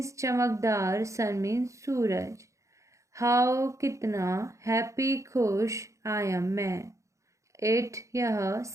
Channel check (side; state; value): left; late; 0.15 ms